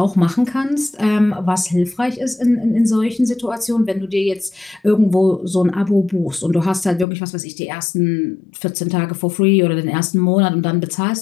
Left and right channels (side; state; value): right; drops out; at 7.1 s